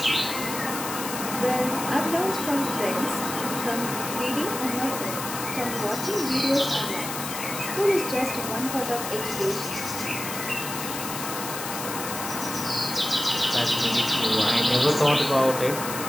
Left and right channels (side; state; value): left; noise; hiss, 6 dB below the sound